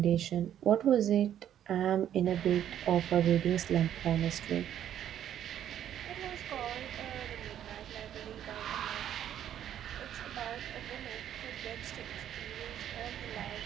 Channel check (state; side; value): quieter; left; 10.5 dB